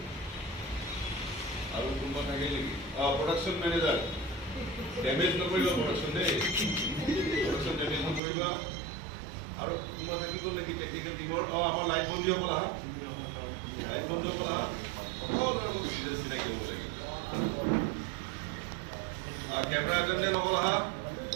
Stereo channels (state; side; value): drops out; left; at 8.2 s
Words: আৰু কোনোবা থাকে নেকি প্ৰডাকশ্যন মেনেজাৰ ডেমেজ নকৰিবা প্ৰডাকশ্যন দেই প্ৰডাকশ্যন ডেমেজ নকৰিবা আৰু কোনোবা থাকিব নেকি টেকনিকেল টিমৰ আমাৰ লাইট বন্ধীসকল আহা লাইট বন্ধীসকল আহা সকলো চিনাকি হ'ব লাগে কেমেৰা এটেণ্ডেণ্ট সকল আহা